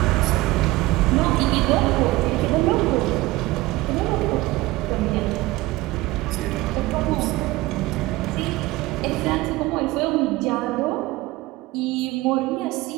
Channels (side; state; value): left; quieter; 19.3 dB